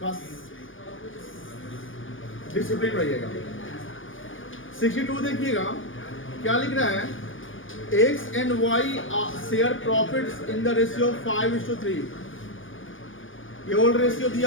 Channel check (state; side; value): late; right; 0.58 ms